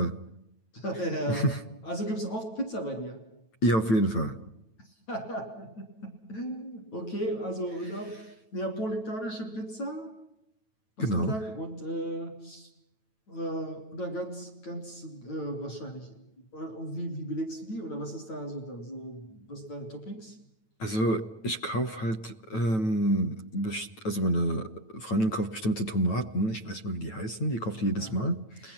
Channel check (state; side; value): late; right; 9.1 ms